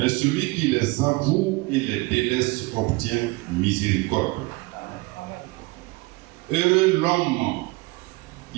celui qui les avoue et les délaisse obtient miséricorde. Heureux l'homme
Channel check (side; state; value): left; quieter; 24.3 dB